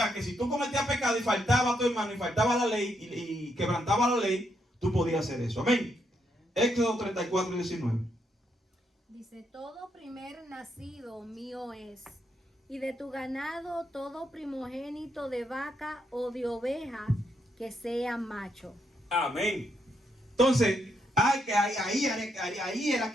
que si tú cometías pecado y faltaba a tu hermano y faltaba la ley y quebrantaba la ley, tú podías hacer eso. Amén. Éxodo 34, 19. Dice, todo primer nacido mío es, y de tu ganado todo primogénito de vaca o de oveja que sea macho. Amén. Entonces, ahí era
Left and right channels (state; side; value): normal; both; correlation 0.78